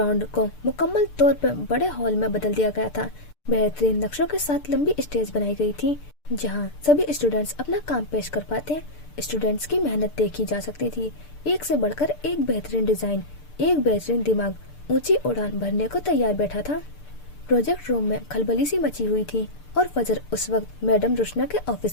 को मुकम्मल तौर पर बड़े हॉल में बदल दिया गया था। बेहतरीन नक्शों के साथ लंबी स्टेज बनाई गई थी जहां सभी स्टूडेंट्स अपना काम पेश कर पाते। स्टूडेंट्स की मेहनत देखी जा सकती थी। एक से बढ़कर एक बेहतरीन डिजाइन, एक बेहतरीन दिमाग ऊंची उड़ान भरने को तैयार बैठा था। प्रोजेक्ट रूम में खलबली सी मची हुई थी, और फजर उस वक्त मैडम रुशना के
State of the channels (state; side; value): late; right; 6.7 ms